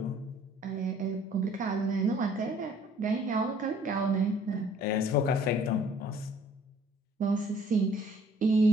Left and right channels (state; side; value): normal; both; correlation 0.57